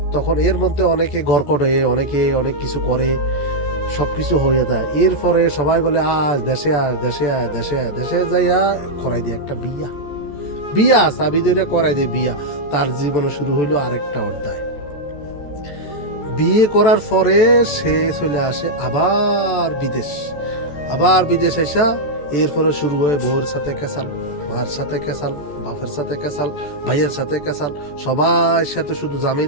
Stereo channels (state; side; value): late; right; 14 ms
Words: তখন এর মধ্যে অনেকে ঘর করে, অনেকে অনেক কিছু করে, সব কিছু হয়ে যায়। এরপরে সবাই বলে আজ দেশে আয়, দেশে আয়, দেশে আয়। দেশে যাইয়া করাই দিয়ে একটা বিয়া চাবি ধরে করাই দিয়ে বিয়া। তার জীবনে শুরু হইলো আরেকটা অধ্যায়। বিয়ে করার পরে সে চলে আসে আবার বিদেশ এসা এরপরে শুরু হয় বউর সাথে কেসাল, মায়ের সাথে কেসাল, বাপের সাথে কেসাল, ভাইয়ের সাথে কেসাল, সবার সাথে শুধু